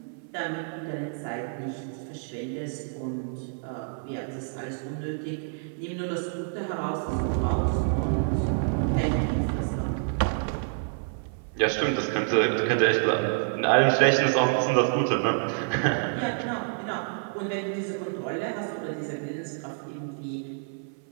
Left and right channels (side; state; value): left; silent; 59 dB below the other